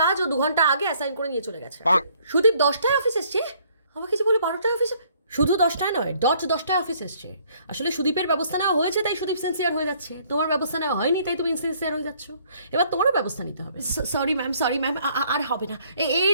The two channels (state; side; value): inverted; both; correlation -0.63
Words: কাজ ও 2 ঘন্টা আগে অ্যাসাইন করে নিয়ে চলে গেছে। সুদীপ 10টায় অফিস এসছে? আমাকে যে বলে 12টায় অফিসে। শুধু 10টায় নয়, 10টায় অফিস এসছে। আসলে সুদীপের ব্যবস্থা নেওয়া হয়েছে তাই সুদীপ সিনসিয়ার হয়ে যাচ্ছে। তোমার ব্যবস্থা নেওয়া হয়নি তাই তুমি ইনসিনসিয়ার হয়ে যাচ্ছ। এবার তোমারও ব্যবস্থা নিতে হবে। সরি ম্যাম, আর হবে না, এই